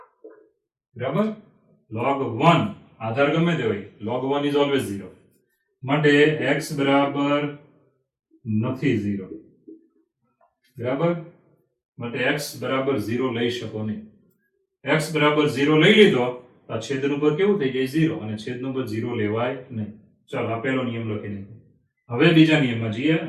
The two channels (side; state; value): both; identical; correlation 1.00